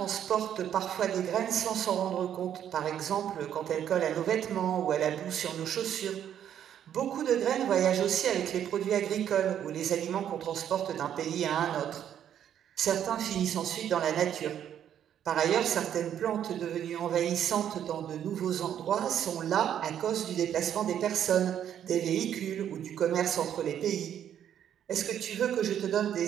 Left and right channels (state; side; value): quieter; left; 9.8 dB